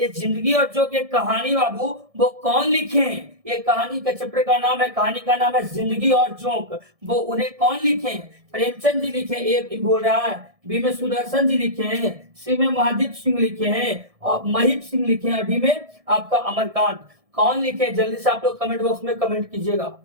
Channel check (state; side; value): late; left; 1.6 ms